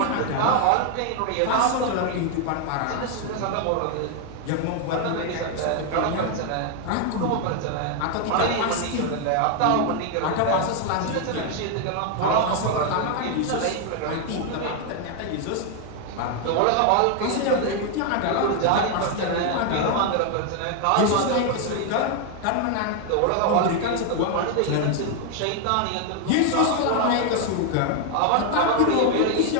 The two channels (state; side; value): different; both; correlation 0.00